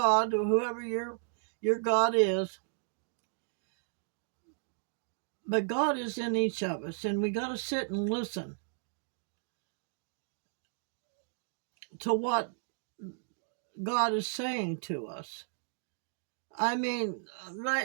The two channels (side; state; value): left; silent; digital silence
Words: or whoever your God is. But God is in each of us, and we got to sit and listen to what God is saying to us. I mean,